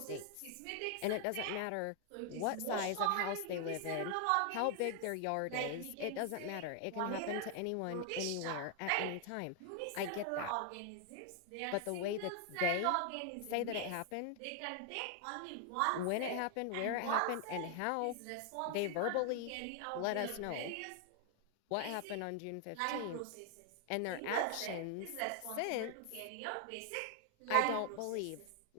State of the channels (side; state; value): both; different; correlation 0.00